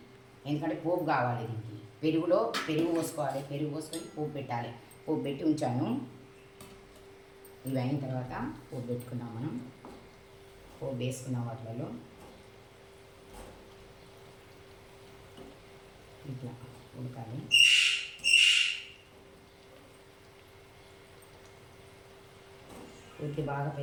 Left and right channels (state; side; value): identical; both; correlation 1.00